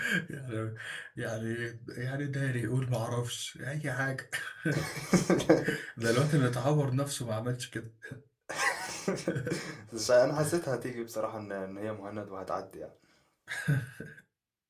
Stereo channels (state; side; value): identical; both; correlation 1.00